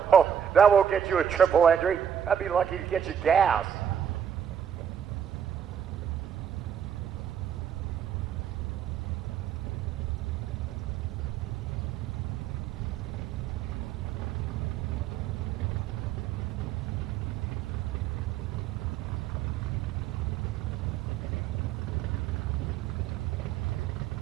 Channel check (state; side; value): quieter; left; 8.6 dB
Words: Oh, that won't get you a triple entry. That'd be lucky to get you gas.